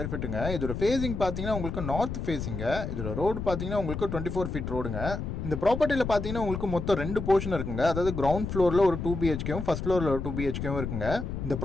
ஃபீட்டுங்க. இதோட ஃபேசிங் பார்த்தீங்கன்னா உங்களுக்கு நார்த் ஃபேசிங்க. இதோட ரோடு பார்த்தீங்கன்னா உங்களுக்கு 24 ஃபீட் ரோடுங்க. இந்த ப்ராப்பர்ட்டியில் பார்த்தீங்கன்னா உங்களுக்கு மொத்தம் 2 போர்ஷன் இருக்குங்க. அதாவது கிரவுண்ட் ஃப்ளோரில் ஒரு 2 BHKவும் ஃபர்ஸ்ட் ஃப்ளோரில் ஒரு 2 BHKவும் இருக்குங்க. இந்த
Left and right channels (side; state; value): left; noise; rumble, 5 dB below the sound